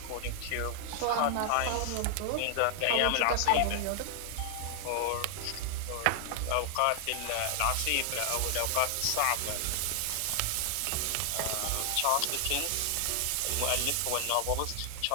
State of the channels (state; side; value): different; both; correlation 0.00